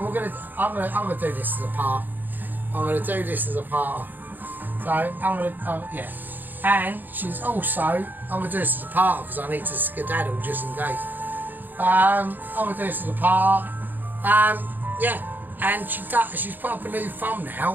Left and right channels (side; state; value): left; late; 0.088 ms